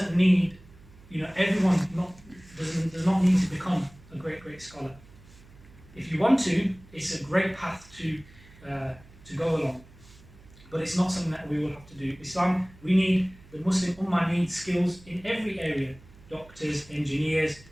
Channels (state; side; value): noise; right; hum, 23 dB below the sound